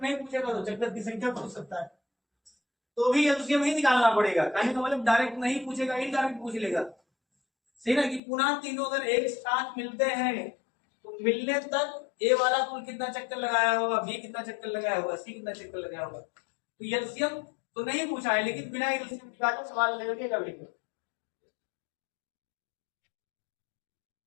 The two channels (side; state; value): right; drops out; at 8.2 s